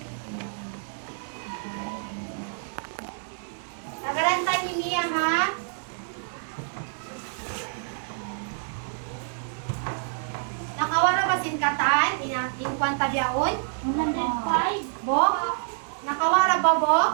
Nagarantay ni Mia, ha? Nakawara ba sinkatan? In kwanta biyaon? 105. Bo? Nakawara ba,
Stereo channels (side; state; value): left; silent; 60 dB below the other